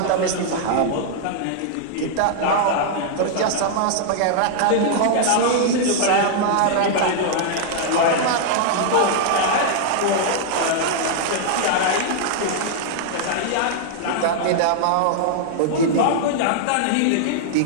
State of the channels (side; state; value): both; different; correlation -0.01